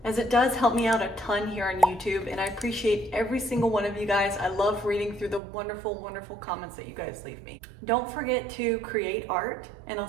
as it does help me out a ton here on YouTube, and I appreciate every single one of you guys. I love reading through the wonderful, wonderful comments that you guys leave me. Don't forget to create art, and I'll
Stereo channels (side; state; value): left; drops out; at 5.4 s